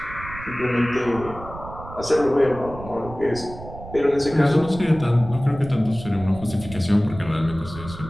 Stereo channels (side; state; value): right; noise; rumble, 13 dB below the sound